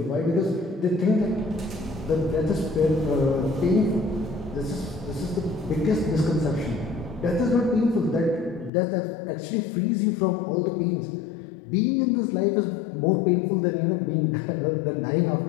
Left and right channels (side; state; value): right; drops out; at 8.7 s